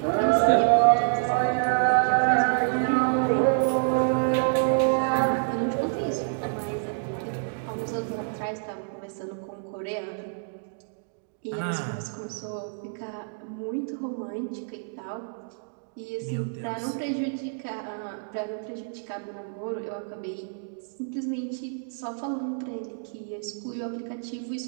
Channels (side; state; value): left; silent; digital silence